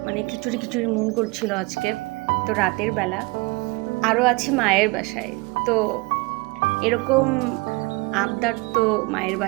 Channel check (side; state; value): left; quieter; 25.7 dB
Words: মানে খিচুড়ি খিচুড়ি মন করছিল আজকে। তো রাতের বেলা আরও আছি মায়ের বাসায়। তো এরকম আবদার তো মায়ের